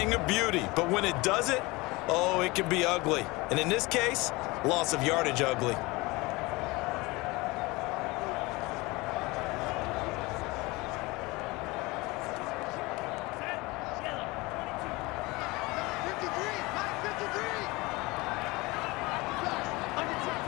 of beauty. But when it doesn't, oh, it can be ugly. And in this case, loss of yardage ugly.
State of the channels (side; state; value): right; quieter; 23.1 dB